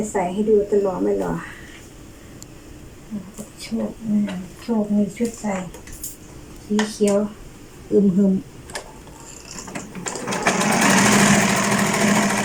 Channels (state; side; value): identical; both; correlation 1.00